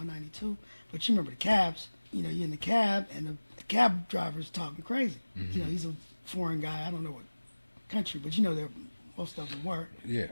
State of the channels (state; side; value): inverted; both; correlation -1.00